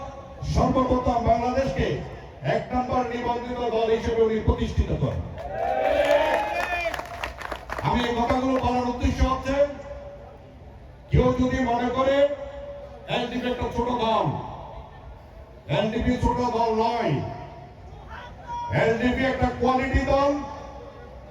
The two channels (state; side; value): identical; both; correlation 1.00